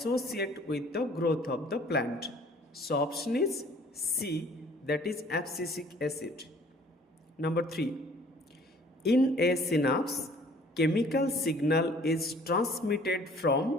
with the growth of the plant. So option is C, that is abscisic acid. Number 3. In a synapse, chemical signal is transmitted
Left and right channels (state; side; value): normal; both; correlation 0.54